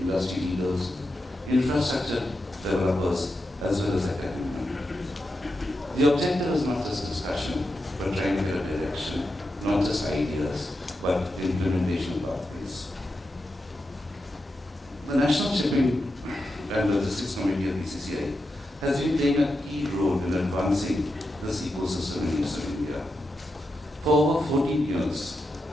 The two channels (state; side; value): normal; both; correlation 0.88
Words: leaders, infrastructure developers, as well as academia. The objective is not just discussion, but trying to get a direction, not just ideas, but implementation pathways. The National Shipping and Logistics Committee of BCC&I has been playing a key role in advancing this ecosystem in Eastern India. For over 14 years,